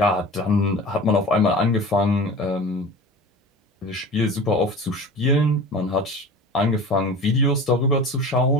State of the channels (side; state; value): both; normal; correlation 0.36